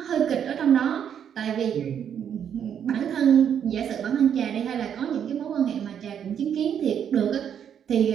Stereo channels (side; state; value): left; quieter; 8.6 dB